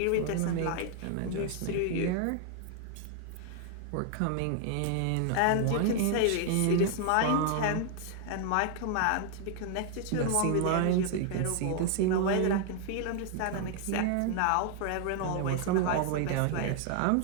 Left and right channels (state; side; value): different; both; correlation 0.00